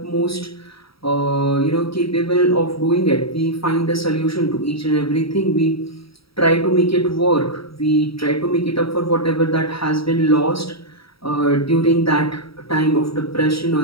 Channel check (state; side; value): late; right; 0.75 ms